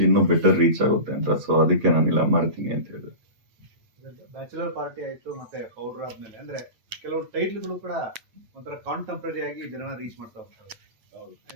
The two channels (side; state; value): left; late; 8.6 ms